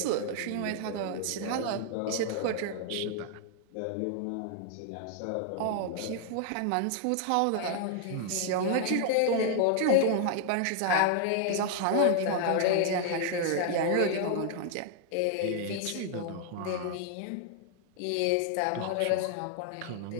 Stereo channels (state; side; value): different; both; correlation 0.00